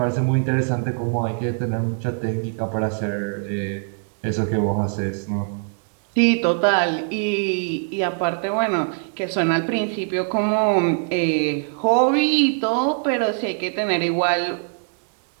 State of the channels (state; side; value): silent; left; 57 dB below the other